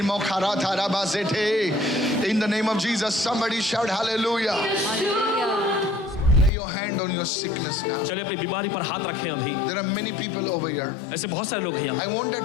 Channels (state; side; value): drops out; right; at 6.5 s